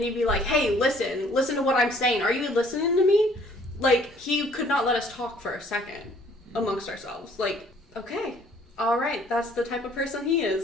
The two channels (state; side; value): normal; both; correlation 0.59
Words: he'd be like, hey, listen to what I'm saying. Are you listening to me? Like, he could not let us talk for a second amongst ourselves. Like, okay, all right, that's the type of person he